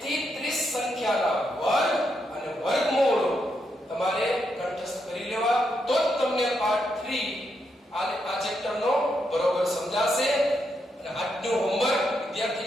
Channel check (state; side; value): normal; both; correlation 0.81